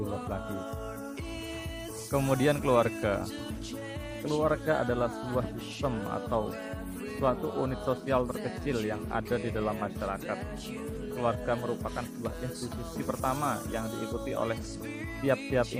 luas lagi. Kemudian keluarga adalah sebuah sistem atau suatu unit sosial terkecil yang ada di dalam masyarakat. Keluarga merupakan sebuah institusi pertama yang diikuti oleh tiap-tiap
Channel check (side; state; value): both; identical; correlation 1.00